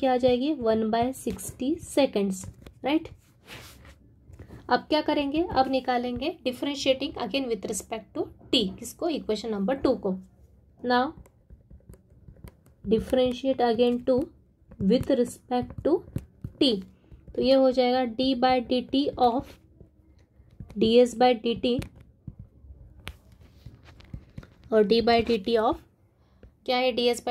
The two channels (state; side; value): identical; both; correlation 1.00